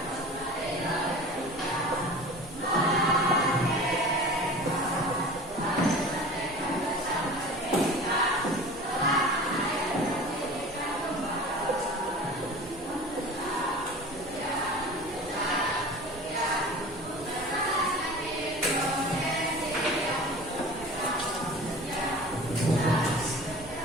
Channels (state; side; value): normal; both; correlation 0.39